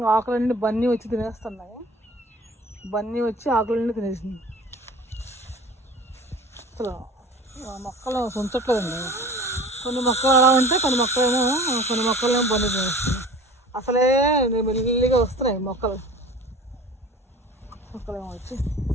ఆకులన్నీ బన్నీ వచ్చి తినేస్తున్నాయి. బన్నీ వచ్చి ఆకులన్నీ తినేసింది. అసలు మొక్కలు ఉంచట్లేదండి. కొన్ని మొక్కలు అలా ఉంటాయి, కొన్ని మొక్కలేమో బన్నీ తినేస్తున్నాయి. అసలే మెల్లిగా వస్తున్నాయి మొక్కలేమో వచ్చి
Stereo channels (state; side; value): normal; both; correlation 0.42